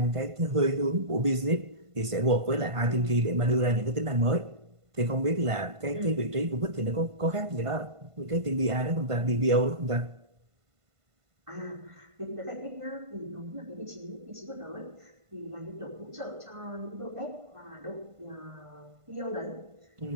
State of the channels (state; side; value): late; left; 1.5 ms